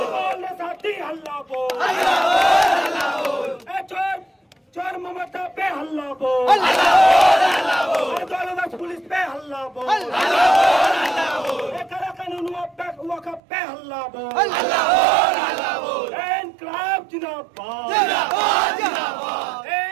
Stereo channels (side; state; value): left; drops out; at 13.4 s